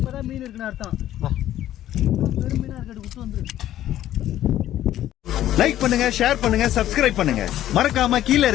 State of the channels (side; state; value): right; quieter; 12.7 dB